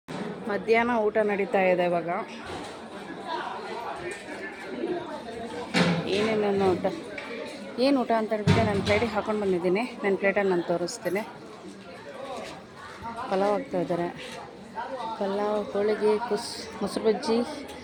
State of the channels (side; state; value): both; identical; correlation 1.00